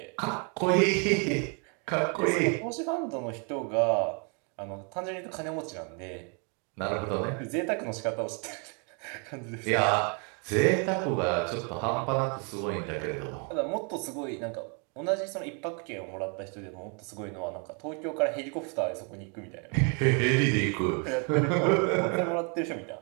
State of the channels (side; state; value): left; quieter; 36.5 dB